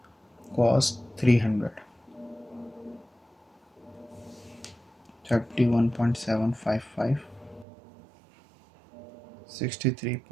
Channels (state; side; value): drops out; left; at 7.7 s